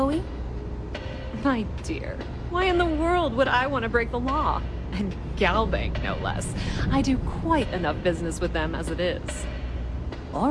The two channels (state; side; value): identical; both; correlation 1.00